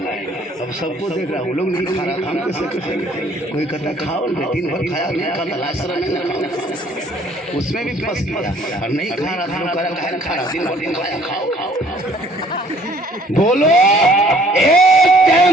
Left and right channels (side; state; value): both; normal; correlation 0.58